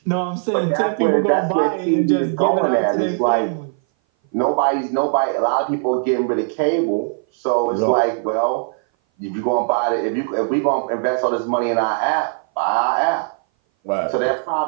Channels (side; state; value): left; silent; 59 dB below the other